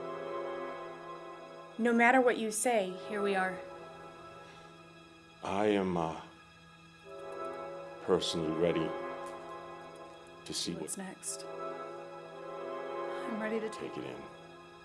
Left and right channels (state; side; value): identical; both; correlation 1.00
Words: No matter what you say, Here we are. I am personally ready to see What's next? I'm ready to take it in.